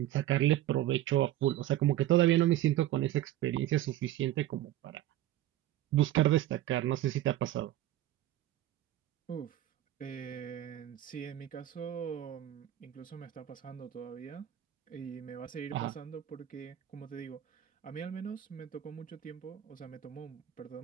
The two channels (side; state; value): left; quieter; 13.4 dB